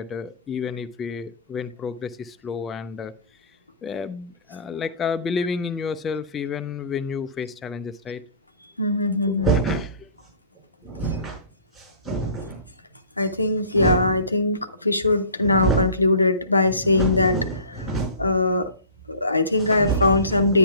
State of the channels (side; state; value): both; inverted; correlation -0.43